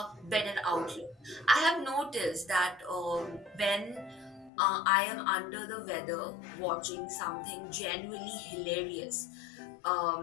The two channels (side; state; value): right; drops out; at 4.5 s